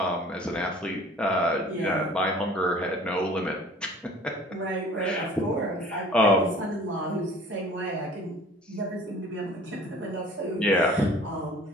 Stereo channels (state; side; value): normal; both; correlation 0.48